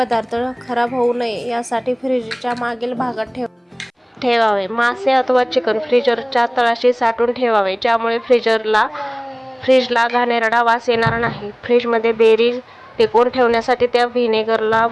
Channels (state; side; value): identical; both; correlation 1.00